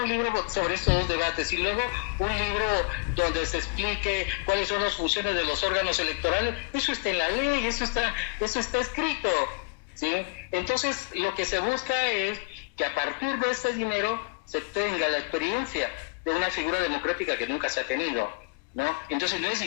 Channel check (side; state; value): right; quieter; 28.2 dB